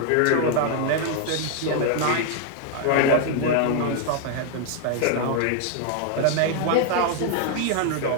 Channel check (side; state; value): both; different; correlation 0.00